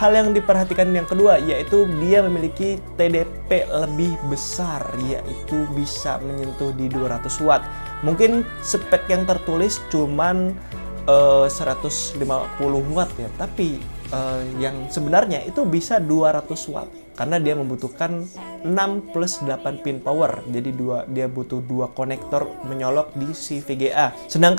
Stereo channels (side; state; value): both; inverted; correlation -1.00